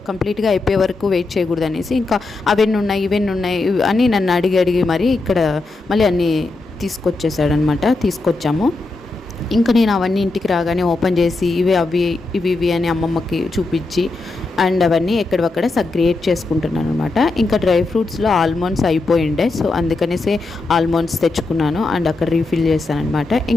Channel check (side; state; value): right; quieter; 3.3 dB